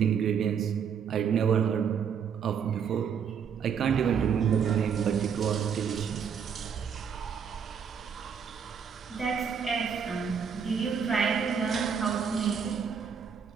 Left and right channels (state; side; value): quieter; left; 7.0 dB